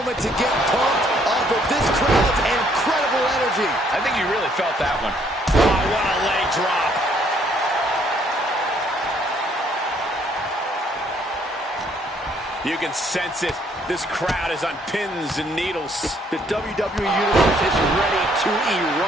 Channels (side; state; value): both; normal; correlation 0.66